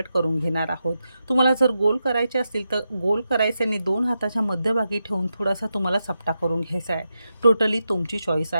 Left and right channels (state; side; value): inverted; both; correlation -0.88